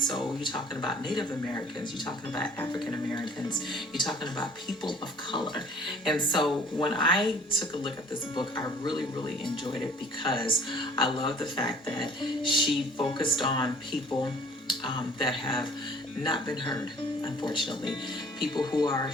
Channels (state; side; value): normal; both; correlation 0.52